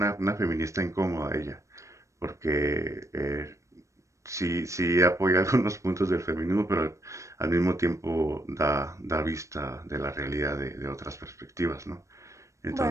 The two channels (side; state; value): left; late; 0.15 ms